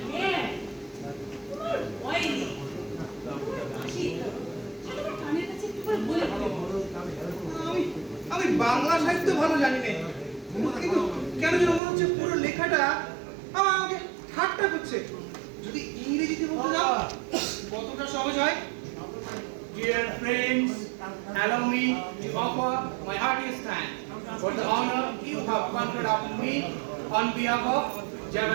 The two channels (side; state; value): left; drops out; at 11.8 s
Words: হ্যাঁ, তোমার ভয় নেই। তোমার কানের কাছে একটু করে বলে আমি বাংলা সাহিত্য ভালো জানি না, কিন্তু কেন যেন মনে হচ্ছে পুরো লেখাটা আমাকে ঠাট্টা করছে। যদি ইংরেজিতে বলতে যাও কতটা সহজ হয়। Dear friends, allow me to offer my heartiest thanks for the honor you have conferred upon me on behalf of